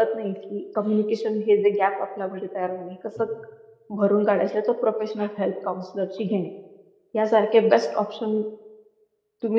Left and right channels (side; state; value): both; identical; correlation 1.00